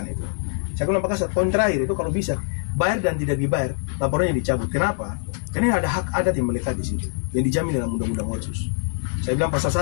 itu. Saya bilang Pak Kasat, poin terakhir itu kalau bisa bayar dan tidak dibayar, laporannya dicabut. Kenapa? Karena ada hak adat yang melekat di situ, yang dijamin dalam Undang-Undang Otsus. Saya bilang pasal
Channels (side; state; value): right; silent; digital silence